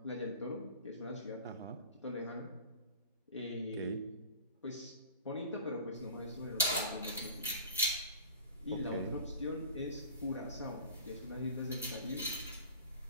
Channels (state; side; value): inverted; both; correlation -0.40